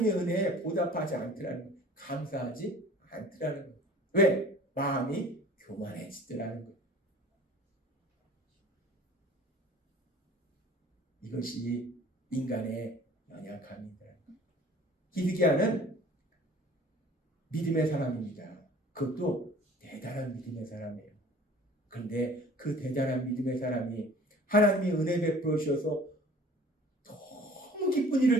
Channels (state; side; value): normal; both; correlation 0.47